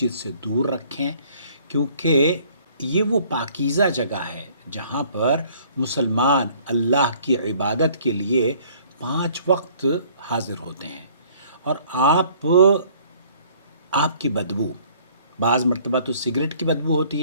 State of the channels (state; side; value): inverted; both; correlation -0.57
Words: سے دور رکھیں، کیونکہ یہ وہ پاکیزہ جگہ ہے جہاں پر مسلمان اللہ کی عبادت کے لیے 5 وقت حاضر ہوتے ہیں، اور آپ کی بدبو بعض مرتبہ تو سگریٹ کی بدبو